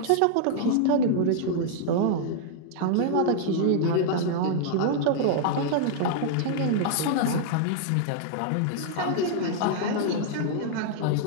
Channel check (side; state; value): both; different; correlation -0.01